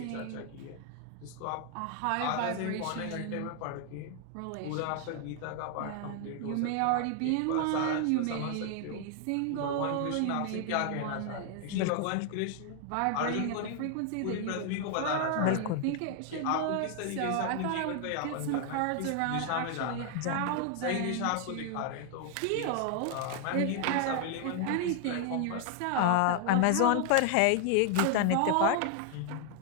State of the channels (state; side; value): different; both; correlation 0.00